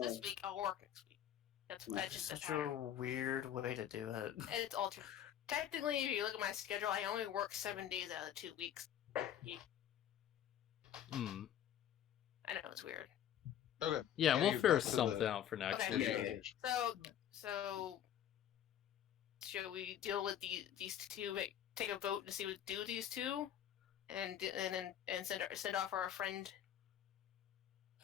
this week, I'll work next week. That's just Such a weird way to do it. It's altered. Technically, if you look at my schedule, I only work 7 days out of the 2 weeks. Hmm. I know it's weird. Okay. Yeah, we'll back figure to something the- out for next Okay. week. Yeah. So, should we deal with these two? Take a vote to see what do these two, and send off our friend.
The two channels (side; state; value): right; quieter; 10.5 dB